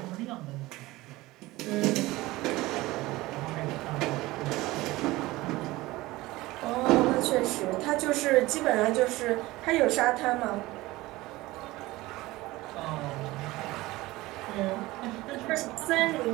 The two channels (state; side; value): quieter; left; 19.3 dB